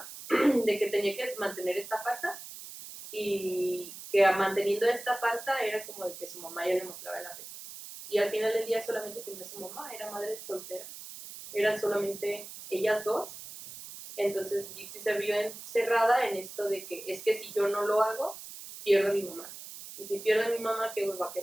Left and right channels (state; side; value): noise; right; hiss, 13 dB below the sound